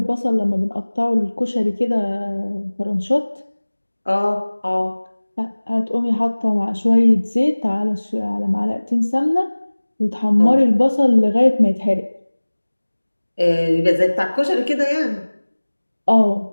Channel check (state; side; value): inverted; both; correlation -1.00